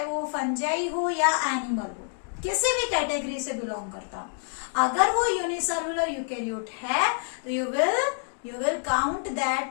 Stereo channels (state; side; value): silent; right; digital silence